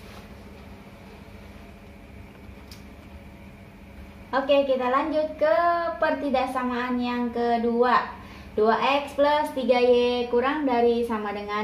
Oke, kita lanjut ke pertidaksamaan yang kedua. 2x plus 3y kurang dari sama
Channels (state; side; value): identical; both; correlation 1.00